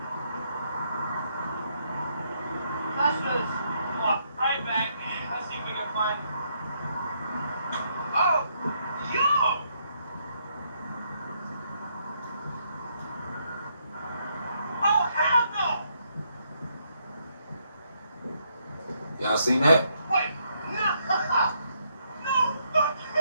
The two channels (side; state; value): both; inverted; correlation -0.74